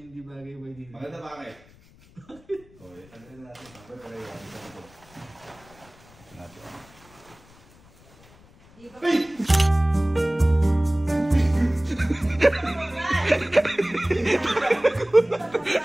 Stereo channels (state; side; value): noise; left; rumble, 26 dB below the sound